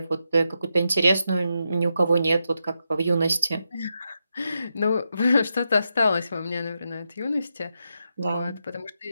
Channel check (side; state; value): both; inverted; correlation -0.85